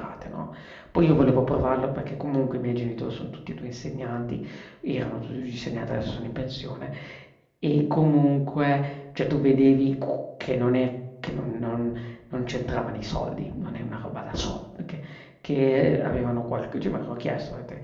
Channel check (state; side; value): identical; both; correlation 1.00